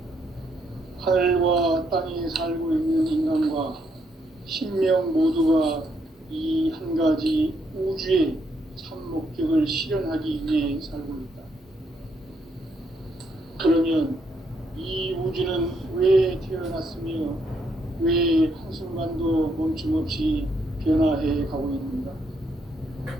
하늘과 땅에 살고 있는 인간과 신명 모두가 이 한 가지 우주의 참 목적을 실현하기 위해 살고 있다. 그러면 이 우주는 왜 태어났으며 왜 한순간도 멈춤 없이 변화해 가고 있는가?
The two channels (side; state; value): both; normal; correlation 0.75